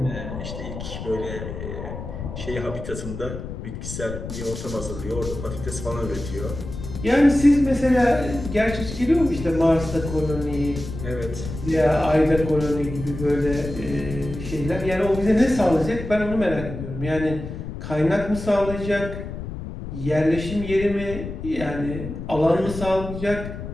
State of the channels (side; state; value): left; noise; rumble, 8 dB below the sound